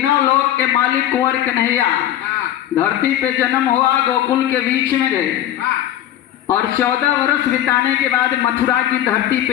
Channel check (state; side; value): quieter; right; 12.1 dB